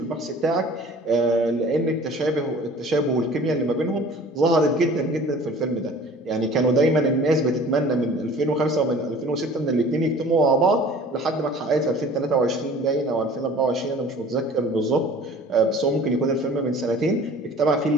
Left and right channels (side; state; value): both; normal; correlation 0.47